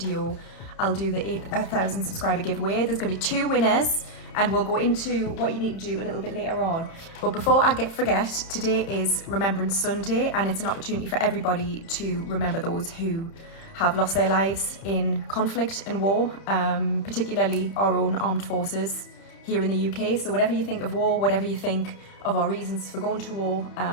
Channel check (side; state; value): right; late; 30 ms